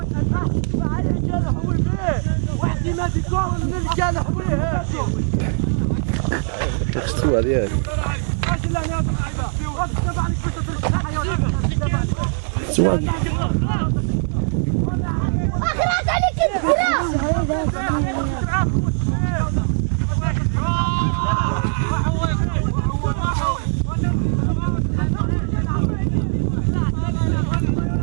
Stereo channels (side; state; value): left; silent; 62 dB below the other